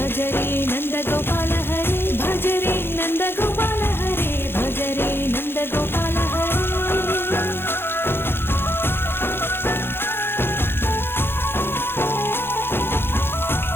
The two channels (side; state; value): right; late; 0.11 ms